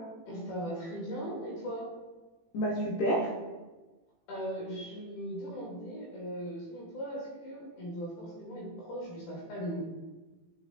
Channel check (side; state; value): right; late; 18 ms